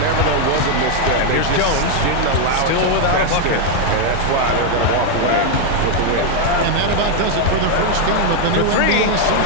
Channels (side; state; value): both; different; correlation 0.00